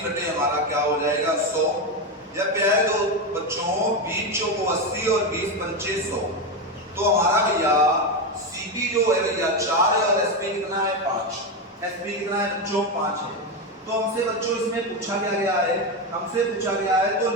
बटे हमारा क्या हो जाएगा 100। जब प्यारे दो बच्चों 20 चौको 80 और 20 पंचे 100, तो हमारा भैया सीपी जो है भैया 4 है और एसपी कितना है 5। एसपी कितना है बच्चों, 5 है। तो हमसे बच्चों इसमें पूछा क्या गया है, हमसे पूछा गया है तो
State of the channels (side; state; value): both; normal; correlation 0.12